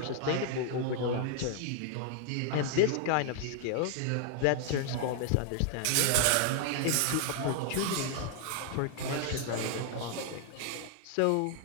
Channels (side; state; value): both; different; correlation 0.00